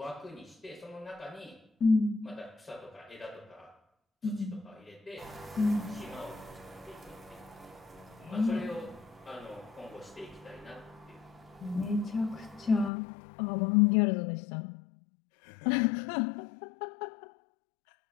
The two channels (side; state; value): right; drops out; at 12.9 s